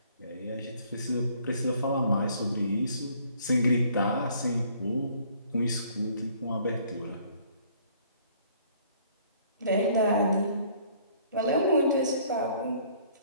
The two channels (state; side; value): inverted; both; correlation -0.60